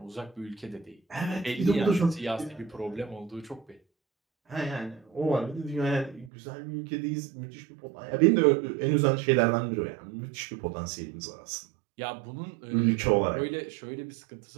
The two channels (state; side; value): drops out; left; at 6.3 s